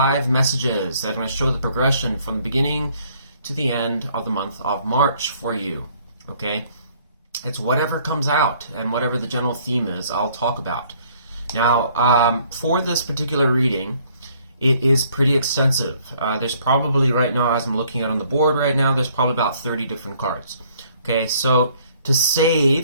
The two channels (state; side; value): inverted; both; correlation -0.62